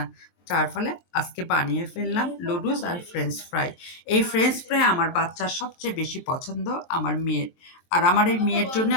যার ফলে আজকে বানিয়ে ফেললাম লুডুস আর ফ্রেঞ্চ ফ্রাই। এই ফ্রেঞ্চ ফ্রাই আমার বাচ্চার সবচেয়ে বেশি পছন্দ, আমার মেয়ের। আর আমার এই মেয়ের জন্য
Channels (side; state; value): right; late; 23 ms